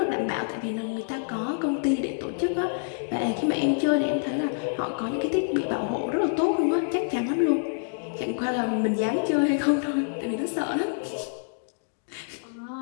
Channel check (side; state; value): right; silent; digital silence